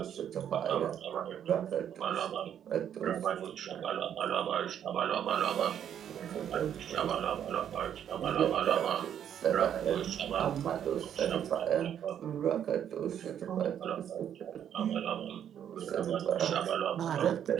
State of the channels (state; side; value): quieter; left; 9.4 dB